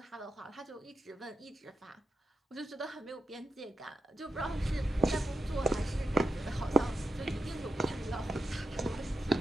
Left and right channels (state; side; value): normal; both; correlation 0.87